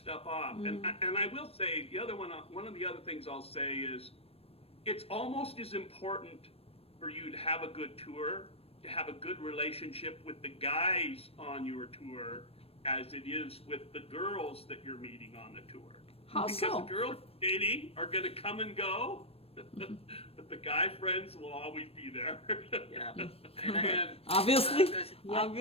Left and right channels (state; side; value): late; right; 0.28 ms